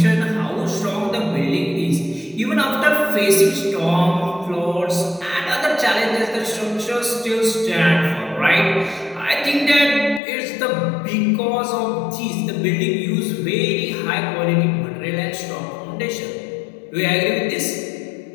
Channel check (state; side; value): drops out; right; at 10.2 s